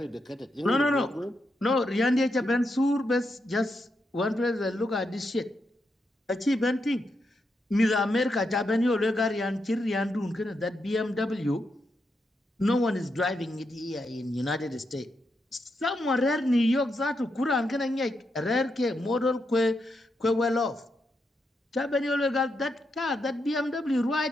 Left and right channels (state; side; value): normal; both; correlation 0.83